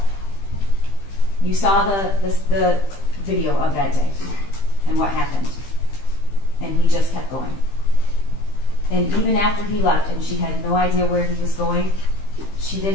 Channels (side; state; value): right; late; 15 ms